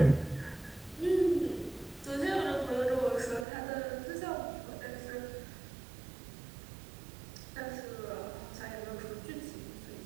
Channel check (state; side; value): drops out; left; at 3.5 s